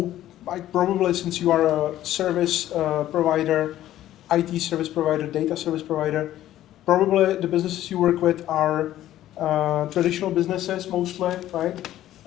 probably, since you are a service provider, IT service provider, data service provider, probably the businesses you work with are traditional businesses mostly, right?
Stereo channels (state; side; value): quieter; right; 13.3 dB